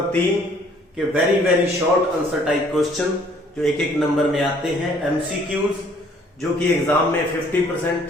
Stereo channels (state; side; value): normal; both; correlation 0.60